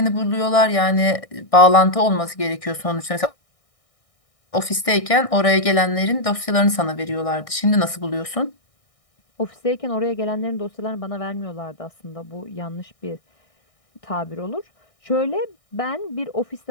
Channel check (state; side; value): late; right; 1.6 ms